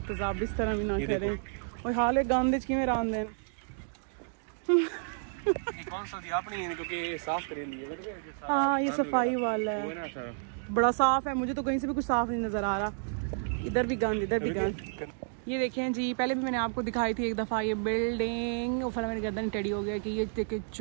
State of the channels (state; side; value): silent; left; digital silence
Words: इस तरह भी ना करें। और हाल है गांधीज की में रान देन। कौन सा दिया आपने, क्योंकि साफ कर लिया। हाँ, ये सफाई वाला है, बड़ा साफ है। मुझे तो कहीं से भी कुछ साफ नहीं नजर आ रहा। इधर भी गंद, इधर भी गंद। ये देखें जी, पहले भी मैंने आपको दिखाई थी एक दफ़ा ये बिल्डिंग। और फिर मेरी गर्दन टेढ़ी हो गया कि ये देखे